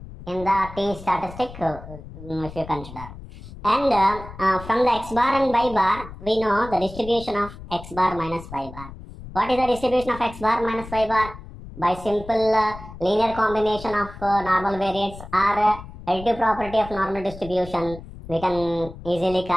in the T statistic, if you consider. And from the x bar and y bar, we know the distribution of x bar minus y bar. What is the distribution of x bar minus y bar? By simple linear combination of normal variates or additive property of normal distribution, we can easily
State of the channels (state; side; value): noise; left; rumble, 15 dB below the sound